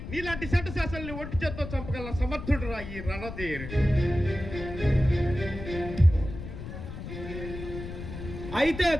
నీలాంటి సెంట శాసనల్ని ఒంటి చేత్తో చంపగల సమర్థుడు రా ఈ రణధీర్. అయితే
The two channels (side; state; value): left; noise; rumble, 9 dB below the sound